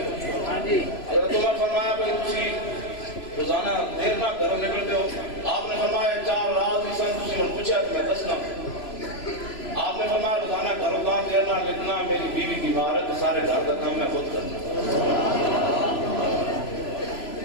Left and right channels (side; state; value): right; late; 3.0 ms